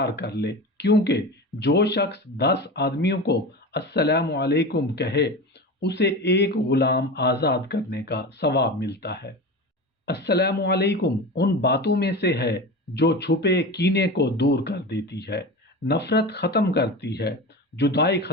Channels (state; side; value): normal; both; correlation 0.28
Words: कर ले, क्योंकि जो शख्स 10 आदमियों को अस्सलामु अलैकुम कहे उसे एक गुलाम आज़ाद करने का सवाब मिलता है। अस्सलामु अलैकुम उन बातों में से है जो छुपे कीने को दूर कर देती है, नफरत ख़त्म करती है, जुदाई